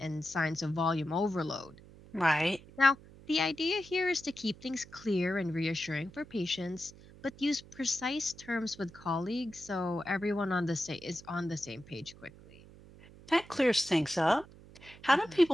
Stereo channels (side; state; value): right; noise; hum, 21 dB below the sound